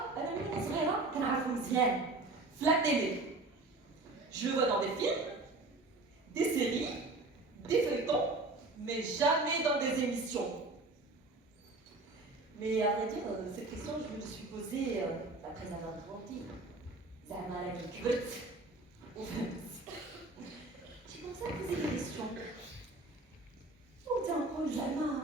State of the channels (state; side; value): quieter; left; 3.2 dB